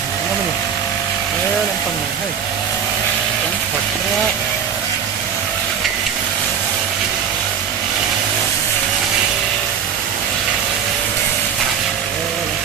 nó mình làm phần này hay cắn thật ra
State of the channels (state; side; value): quieter; left; 7.7 dB